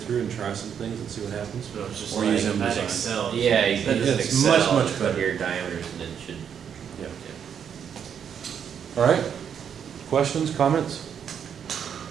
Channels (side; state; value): left; quieter; 8.0 dB